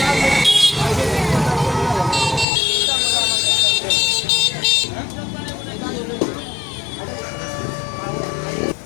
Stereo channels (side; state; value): right; drops out; at 2.5 s